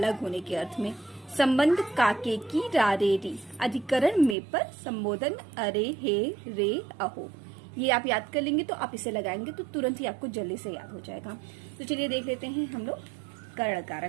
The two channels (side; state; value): left; drops out; at 4.4 s